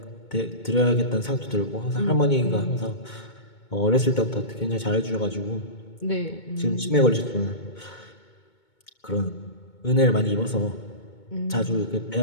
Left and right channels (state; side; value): late; right; 2.2 ms